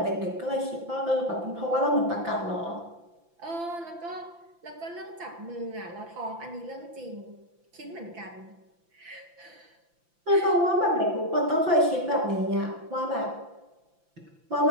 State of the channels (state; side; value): late; left; 5.9 ms